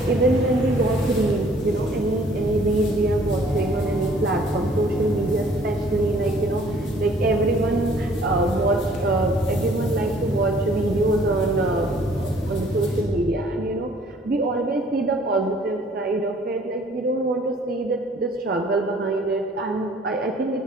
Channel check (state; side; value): normal; both; correlation 0.57